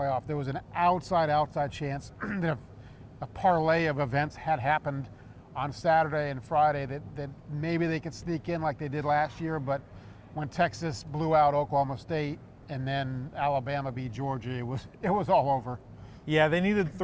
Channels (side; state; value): both; identical; correlation 1.00